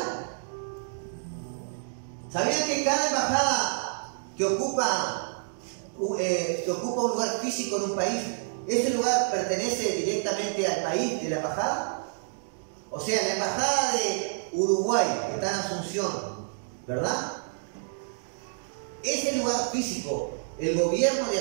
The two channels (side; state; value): left; silent; digital silence